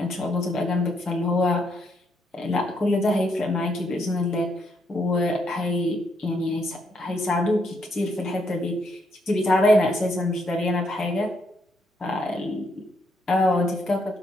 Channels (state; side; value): normal; both; correlation 0.75